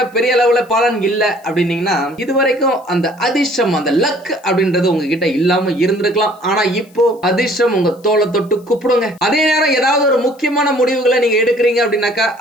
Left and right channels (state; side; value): noise; left; hiss, 30 dB below the sound